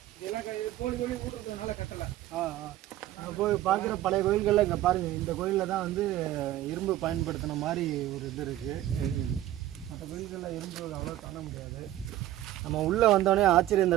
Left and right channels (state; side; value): quieter; left; 13.8 dB